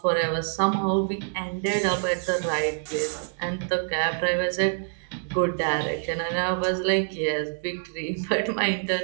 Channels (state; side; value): silent; left; 61 dB below the other